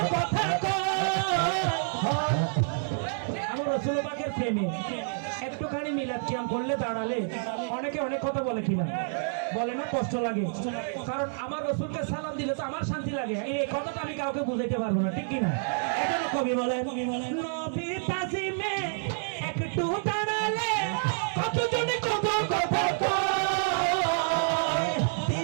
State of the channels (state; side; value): silent; left; 59 dB below the other